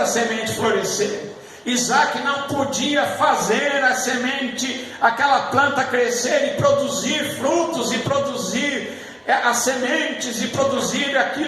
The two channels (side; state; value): both; identical; correlation 1.00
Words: semente florescer. Isaac não podia fazer a semente, aquela planta crescer e produzir frutos, e produzir as sementes, e produzir